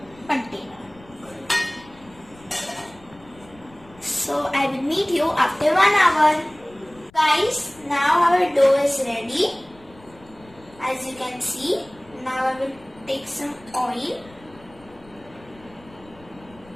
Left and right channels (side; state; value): left; noise; rumble, 25 dB below the sound